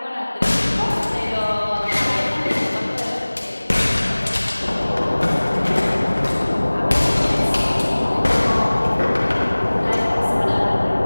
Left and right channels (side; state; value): both; inverted; correlation -1.00